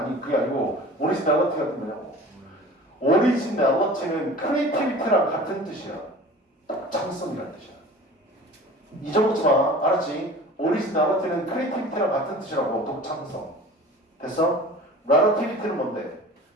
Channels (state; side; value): normal; both; correlation 0.41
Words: 그게 아니고 오리지널리티 같은 거냐고. 오리지널리티는 크리에이티비티랑 같은 뜻이야. 독창성이라는 뜻이야. 잊어먹지 마. 알았지? 오리지널리티는 크리에이티비티랑 같은 뜻이라고. 독창성. 됐어? 라러티비티는 뭔데?